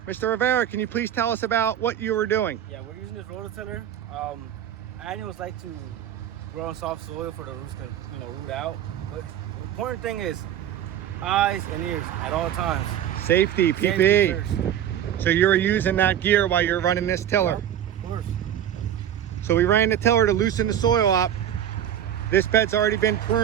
Mr. Rivera, can you please tell us about what you were doing? Yeah, we're using this rototiller. Annuals like to grow on soft soil for the roots to, root out. But the important thing is eyes and ears at all times. Safety, PPE. So you were using that gear while you're running this tiller? Of course. So we ran the tiller to loosen the soil up. This bed's already been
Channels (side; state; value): left; quieter; 10.5 dB